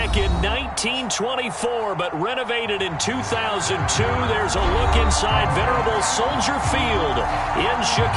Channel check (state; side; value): identical; both; correlation 1.00